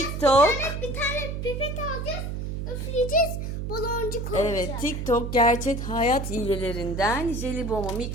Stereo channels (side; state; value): right; noise; hum, 4 dB below the sound